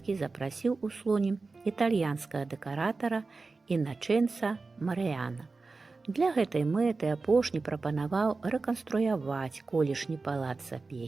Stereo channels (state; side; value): quieter; left; 3.9 dB